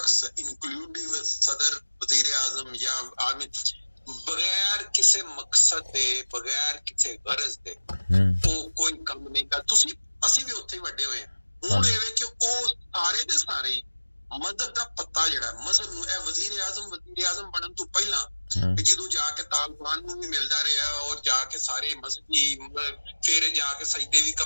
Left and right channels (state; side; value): inverted; both; correlation -1.00